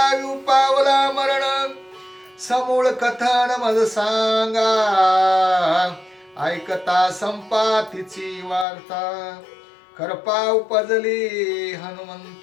पावला मरण समूळ कथन मज सांगा ऐकता संपातीची वार्ता करपा उपजली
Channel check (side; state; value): right; drops out; at 8.7 s